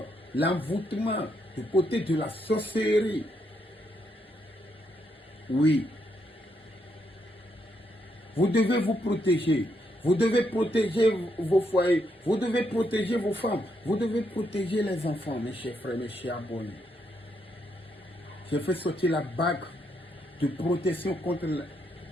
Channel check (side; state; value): both; normal; correlation 0.77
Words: l'envoûtement du côté de la sorcellerie. Oui. Vous devez vous protéger. Vous devez protéger vos foyers. Vous devez protéger vos femmes. Vous devez protéger les enfants, mes chers frères, mes chers abonnés. J'ai fait sortir la bague de protection contre